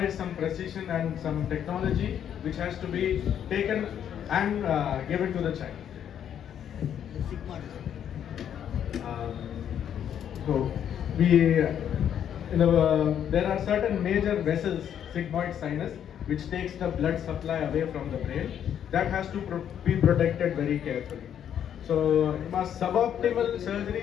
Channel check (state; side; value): quieter; right; 9.4 dB